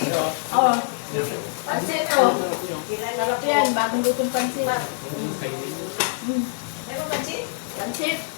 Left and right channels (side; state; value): right; silent; digital silence